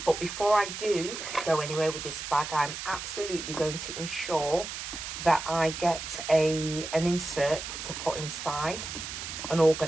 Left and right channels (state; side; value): noise; right; hiss, 7 dB below the sound